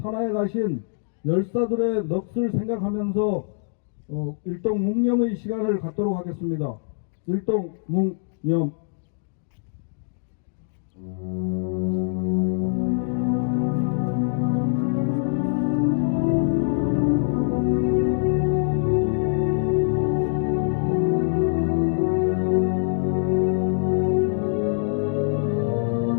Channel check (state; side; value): silent; right; digital silence